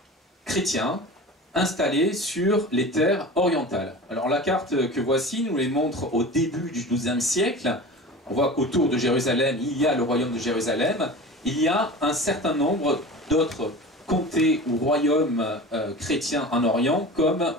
chrétiens installés sur les terres orientales. Alors la carte que voici nous les montre au début du XIIe siècle. On voit qu'autour de Jérusalem, il y a le royaume de Jérusalem. Il y a un certain nombre d'autres comtés ou royaumes chrétiens en Orient, comme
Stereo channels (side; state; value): both; normal; correlation 0.35